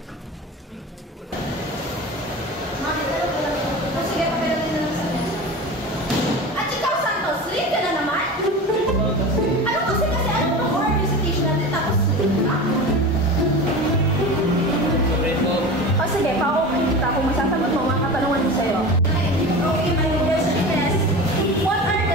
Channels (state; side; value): normal; both; correlation 0.31